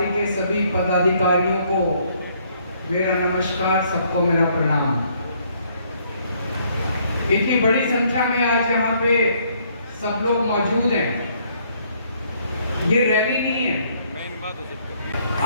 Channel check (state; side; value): inverted; both; correlation -0.67